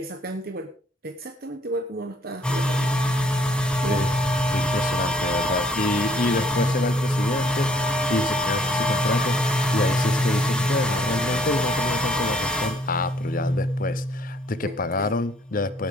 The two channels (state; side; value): normal; both; correlation 0.62